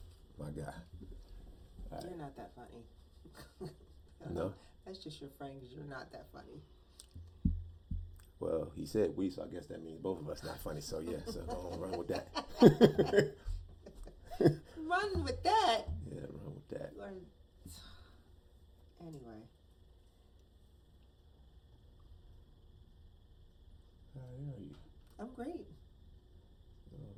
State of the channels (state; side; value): identical; both; correlation 1.00